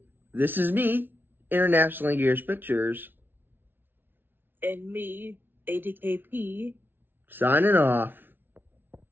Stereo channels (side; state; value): left; late; 0.099 ms